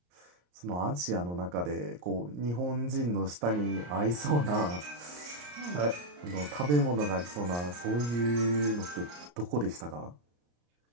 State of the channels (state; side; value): late; left; 34 ms